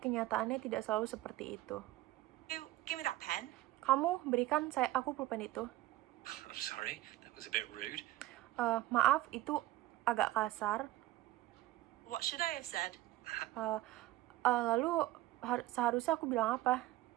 kenyataannya tidak selalu seperti itu. Give me that pen. Kamu berikan aku pulpen itu. I'm sorry, that was a bit rude. Maaf, itu agak kasar. What should I have said? Lalu seharusnya aku bilang apa?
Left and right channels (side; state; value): left; quieter; 16.2 dB